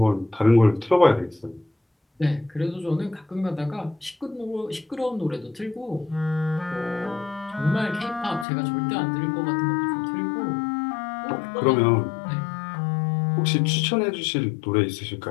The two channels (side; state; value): right; drops out; at 8.5 s